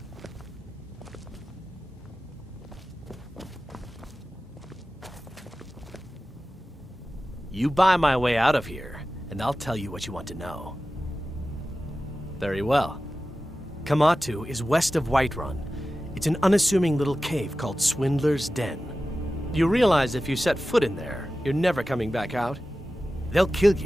You buy my way out of here, and I'll tell you what you want to know. Very well. Kamatu is west of Whiterun. It's an unassuming little cave called Swindler's Den. You realize if you set foot in there, you're never coming back out? They'll kill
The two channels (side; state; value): both; normal; correlation 0.94